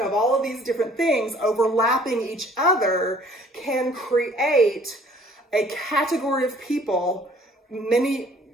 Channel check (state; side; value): normal; both; correlation 0.56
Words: of all of these different things overlapping each other can create a category of people, many